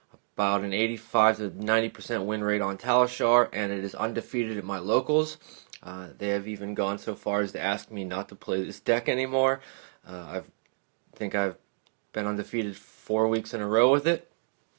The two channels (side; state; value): left; silent; digital silence